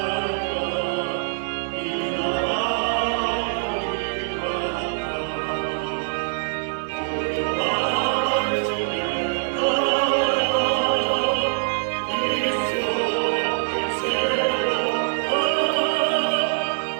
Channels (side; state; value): left; silent; digital silence